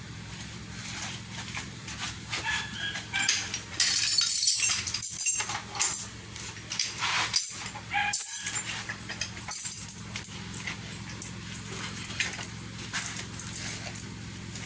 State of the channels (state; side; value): identical; both; correlation 1.00